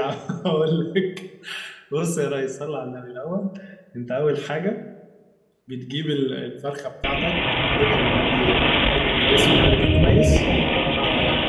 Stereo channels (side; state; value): both; identical; correlation 1.00